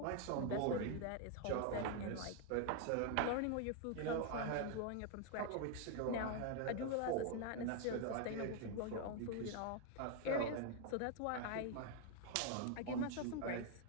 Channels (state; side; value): different; both; correlation 0.00